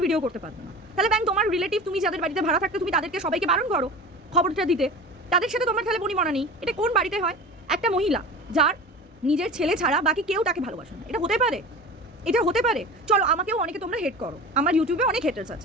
ভিডিও করতে পারবো না। তাহলে ব্যাং তোমার রিলেটিভ, তুমি যাদের বাড়িতে ভাড়া থাকতে, তুমি তাদেরকে সবাইকে বারণ করো খবরটা দিতে, তাদের সাথে তোমার তাহলে বনিবনা নেই। এটা কোন বাড়িতে হয়? একটা মহিলা যার নিজের ছেলে ছাড়া বাকি কেউ তাকে ভালোবাসে না, এটা হতে পারে? এটা হতে পারে? চলো, আমাকেও অনেকে তোমরা হেট করো, আমার ইউটিউবে অনেক হেটার্স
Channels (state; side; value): normal; both; correlation 0.34